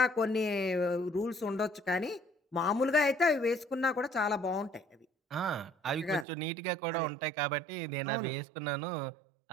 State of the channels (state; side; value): drops out; left; at 6.2 s